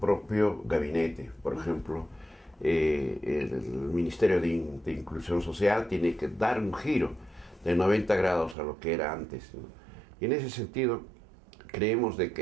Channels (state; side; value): drops out; left; at 8.6 s